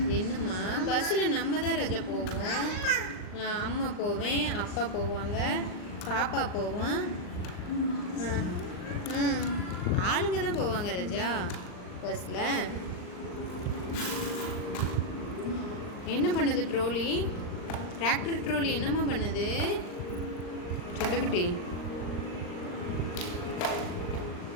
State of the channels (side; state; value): right; late; 39 ms